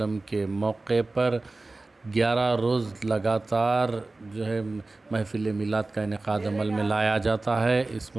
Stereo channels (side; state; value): left; quieter; 3.2 dB